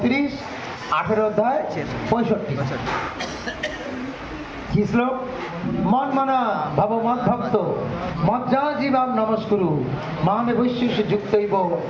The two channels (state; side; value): identical; both; correlation 1.00